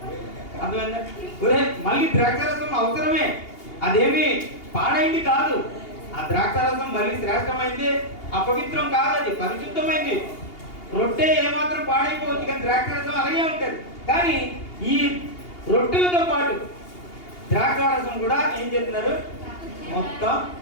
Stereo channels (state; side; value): late; right; 2.8 ms